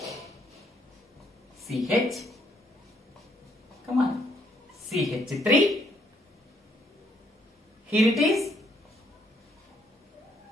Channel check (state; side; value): normal; both; correlation 0.70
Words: CH. Come on. CH3. Here it is.